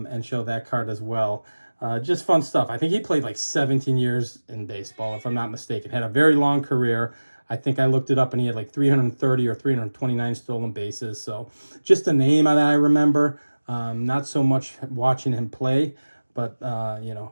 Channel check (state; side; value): inverted; both; correlation -1.00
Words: show that card as well. Just fun stuff. I think he played like 17 years in baseball, if I'm not mistaken. Had a very long career. I think I looked it up, and he had like 330 or 329 stolen bases. So just a name that I remember. Not so much watching him play, but, you